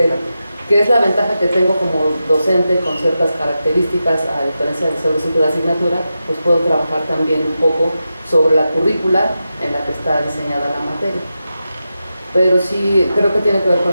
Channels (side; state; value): both; inverted; correlation -0.90